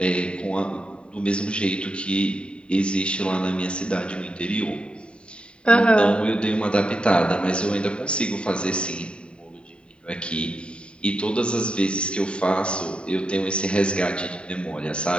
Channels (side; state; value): right; late; 0.053 ms